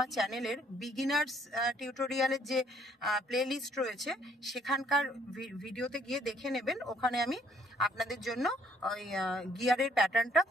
চ্যানেলের বিগিনার্স টিউটোরিয়ালের যে প্লে লিস্ট রয়েছে সেখানকার ভিডিওতে গিয়ে দেখে নেবেন। ওখানে আমি আপনাদের জন্য ওই গিয়ারের প্যাটার্নটা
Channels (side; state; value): both; normal; correlation 0.64